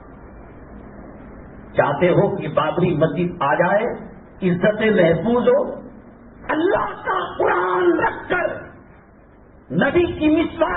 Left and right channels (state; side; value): identical; both; correlation 1.00